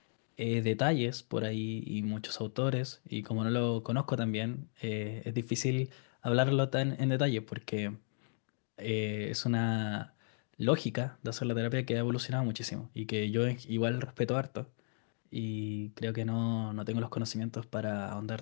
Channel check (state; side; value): silent; right; digital silence